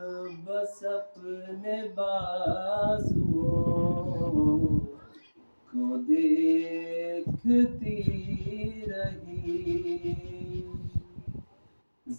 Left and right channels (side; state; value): both; inverted; correlation -1.00